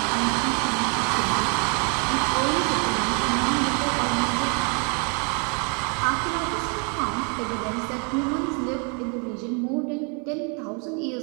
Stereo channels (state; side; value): quieter; left; 36.7 dB